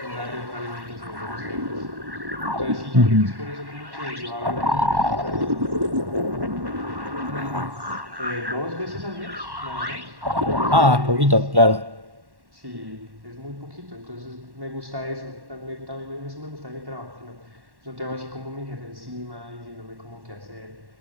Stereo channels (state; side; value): late; left; 1.1 ms